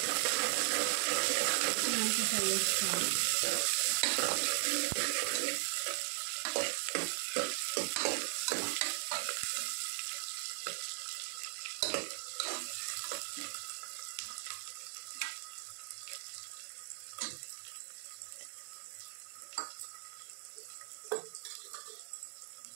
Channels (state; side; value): silent; left; 53 dB below the other